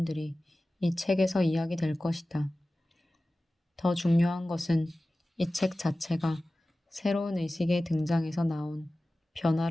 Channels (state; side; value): normal; both; correlation 0.96